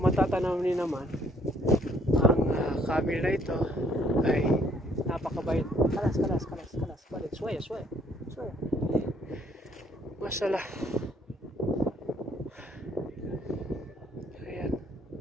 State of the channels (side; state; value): both; normal; correlation 0.65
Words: matatanaw niyo naman ang camel na ito ay napakabait. Kalas. Balik, suwaya. Mashallah. Ayan.